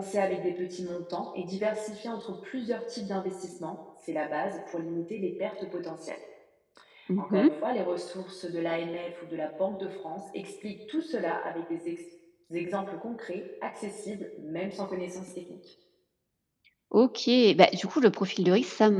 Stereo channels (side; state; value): both; identical; correlation 1.00